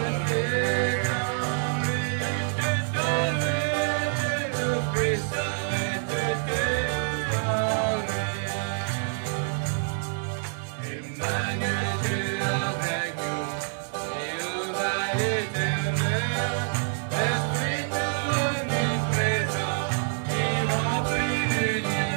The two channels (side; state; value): left; silent; digital silence